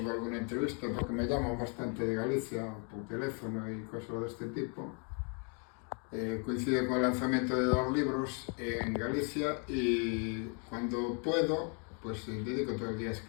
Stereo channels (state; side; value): quieter; right; 38.3 dB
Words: alguna entrevista, porque me llaman bastante de Galicia por teléfono y cosas de este tipo, coincide con el lanzamiento de 2 libros en Galicia y cuando puedo, pues dedico todo el día a